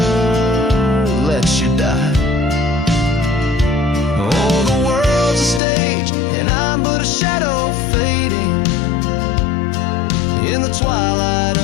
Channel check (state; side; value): drops out; right; at 5.6 s